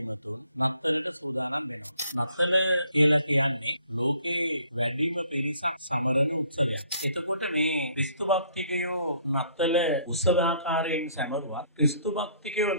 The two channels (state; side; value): inverted; both; correlation -0.61